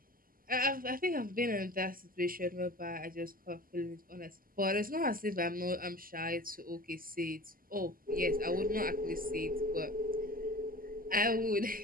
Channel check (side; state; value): left; late; 0.42 ms